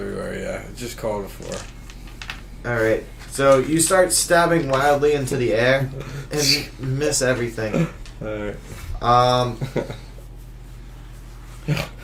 yeah. Just call it a 4. Alright, so you start stabbing wildly into the air and miss everything. Alright.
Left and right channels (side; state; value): both; identical; correlation 1.00